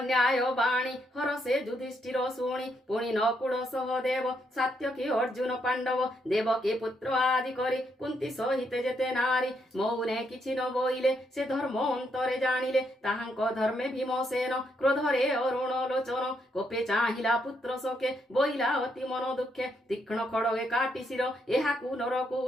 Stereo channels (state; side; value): normal; both; correlation 0.77